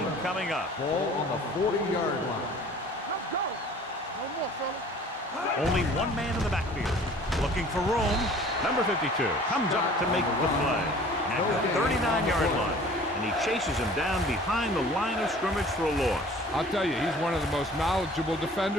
coming up. Ball on the 40-yard line. on, fella. Only one man in the backfield. Looking for room. Number 52 comes up to make the play at the 39-yard line. And he chases him down behind the line of scrimmage for a loss. I'll tell you, he's one of the most knowledgeable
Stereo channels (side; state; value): both; normal; correlation 0.48